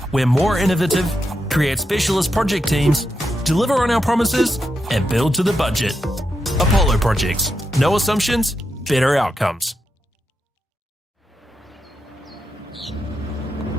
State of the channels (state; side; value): normal; both; correlation 0.86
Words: we're more innovative, create specialist project teams, deliver on our promises, and build to the budget. Apollo Projects. No assumptions, better outcomes.